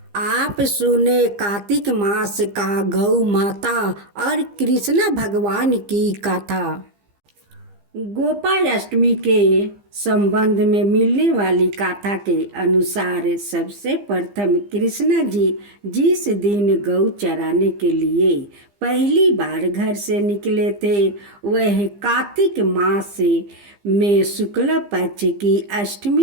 आप सुने कार्तिक मास का गौ माता और कृष्ण भगवान की कथा। गोपाष्टमी के संबंध में मिलने वाली कथा के अनुसार सबसे प्रथम कृष्ण जी जिस दिन गौ चराने के लिए पहली बार घर से निकले थे वह कार्तिक मास में शुक्ल पक्ष की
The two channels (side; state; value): left; late; 15 ms